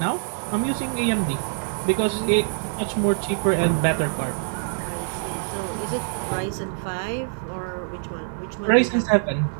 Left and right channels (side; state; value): left; silent; 59 dB below the other